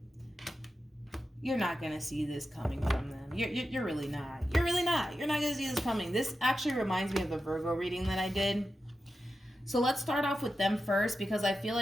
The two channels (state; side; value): normal; both; correlation 0.91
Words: You're not going to see this coming from them. You're really not. You're really not. You're not going to see this coming. This actually reminds me of the Virgo reading that I did. So let's start off with them first, because I feel